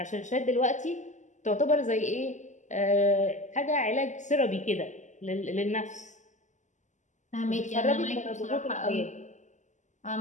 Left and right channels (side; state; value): right; late; 0.35 ms